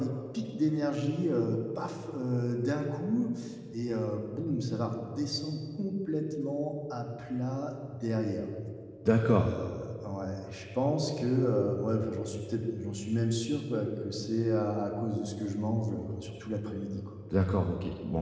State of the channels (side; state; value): both; identical; correlation 1.00